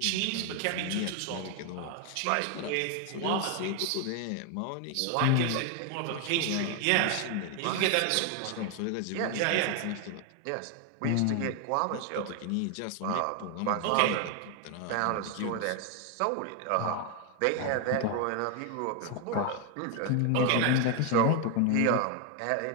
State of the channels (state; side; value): different; both; correlation 0.01